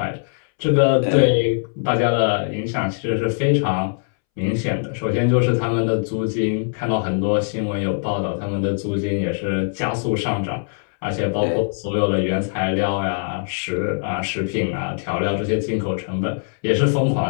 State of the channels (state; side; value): silent; right; 65 dB below the other